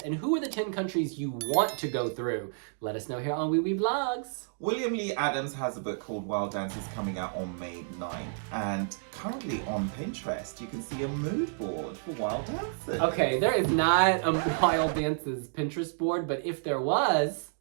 and who are the 10 countries you want to go through? Let us know here on Wiwibloggs. William Lee Adams has a book called Wild Dances coming out on May 9th, and currently on Pinterest you can see a mood board for wild dancing. Okay, there is not a Wild Dances Pinterest board, but if there was,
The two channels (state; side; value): silent; left; digital silence